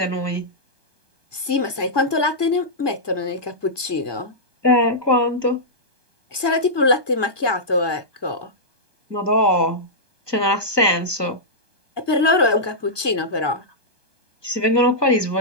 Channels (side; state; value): right; late; 1.2 ms